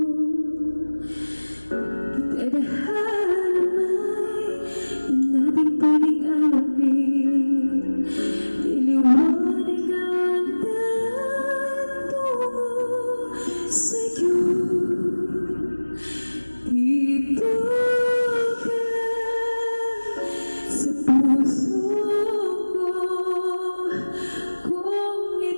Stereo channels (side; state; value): both; inverted; correlation -1.00